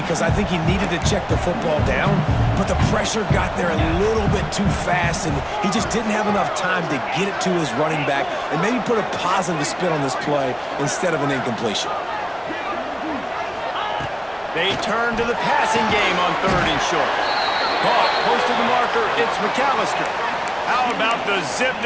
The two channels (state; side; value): identical; both; correlation 1.00